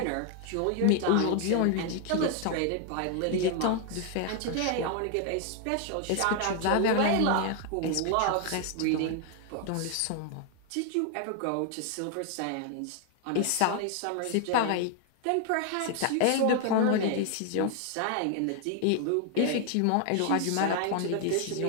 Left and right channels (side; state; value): both; different; correlation 0.00